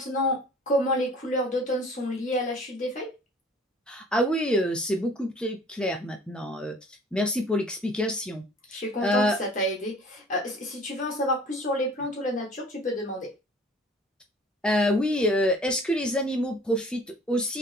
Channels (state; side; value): normal; both; correlation 0.50